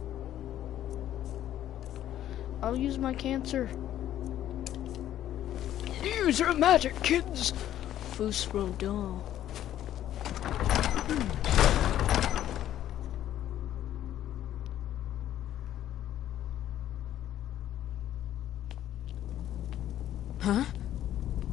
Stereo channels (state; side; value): quieter; right; 11.9 dB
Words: I'll use my cancer. Use your magic, kids! Fusro doll.